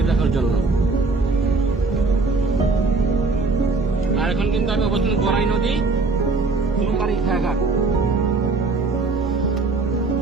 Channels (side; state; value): left; quieter; 3.8 dB